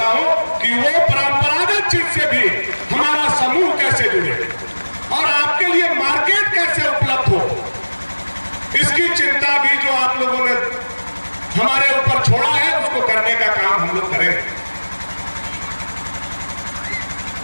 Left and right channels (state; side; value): inverted; both; correlation -1.00